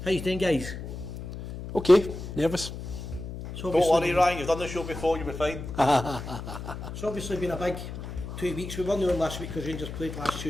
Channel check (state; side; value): noise; left; hum, 9 dB below the sound